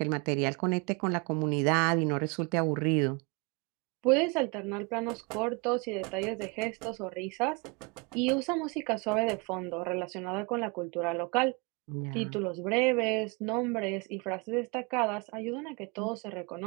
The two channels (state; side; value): quieter; left; 30.2 dB